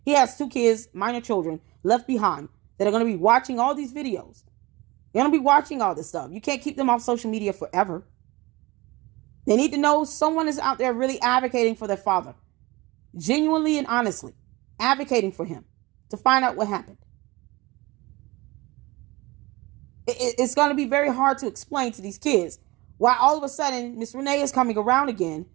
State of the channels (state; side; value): quieter; left; 22.1 dB